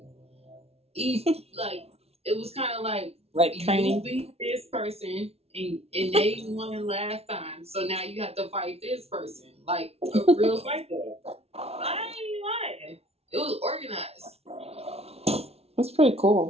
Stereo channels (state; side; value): late; left; 0.30 ms